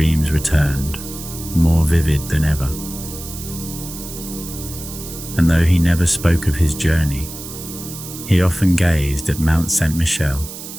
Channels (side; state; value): right; noise; hiss, 11 dB below the sound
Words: returned, more vivid than ever. And though he never spoke of his journey, he often gazed at Mount Saint Michele,